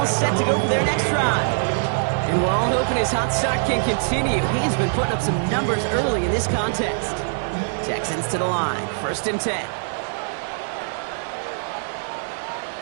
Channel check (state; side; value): silent; left; digital silence